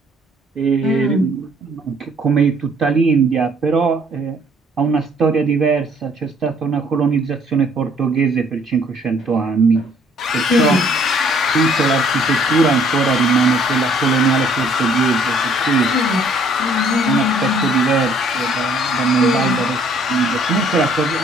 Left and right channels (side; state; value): both; normal; correlation 0.61